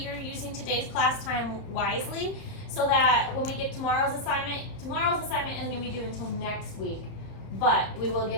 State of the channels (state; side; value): late; right; 31 ms